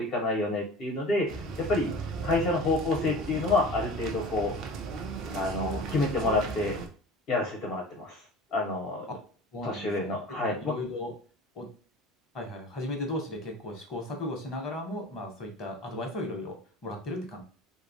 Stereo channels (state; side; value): normal; both; correlation 0.38